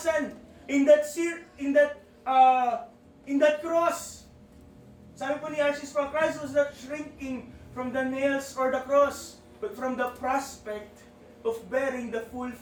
in that cross. Sabi po ni R.C. Sproul, Christ was not shrinking from the nails or the cross, but from the prospect of bearing the full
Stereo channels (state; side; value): identical; both; correlation 1.00